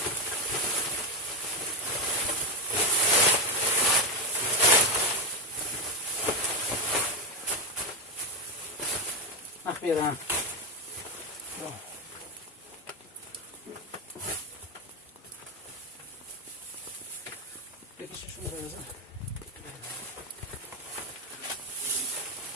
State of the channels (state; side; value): normal; both; correlation 0.08